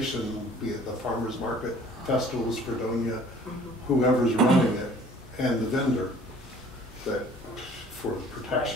be it the farmer's market, Festivals Fredonia, whoever's running it, and the vendor, that for the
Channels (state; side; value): normal; both; correlation 0.52